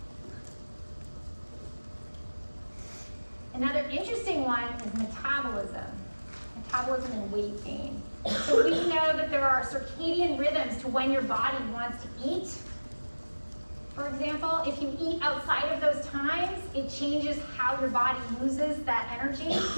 Another interesting one is metabolism. Metabolism and weight gain. So we know that there are circadian rhythms to when your body wants to eat. For example, if you eat outside of those times, it changes how your body uses that energy.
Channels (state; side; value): inverted; both; correlation -1.00